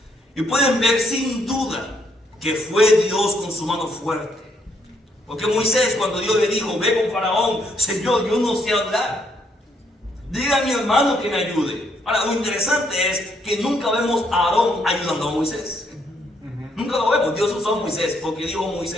Y pueden ver sin duda que fue Dios con su mano fuerte. Porque Moisés, cuando Dios le dijo: ve con Faraón, Señor, yo no sé hablar. Dile a mi hermano que me ayude. Ahora, lo interesante es que nunca vemos a Aarón ayudando a Moisés. Nunca lo vemos. Dios usó a Moisés porque dijo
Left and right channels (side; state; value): both; normal; correlation 0.72